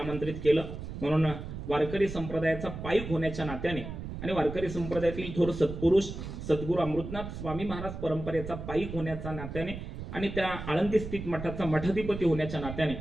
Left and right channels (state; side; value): noise; right; rumble, 8 dB below the sound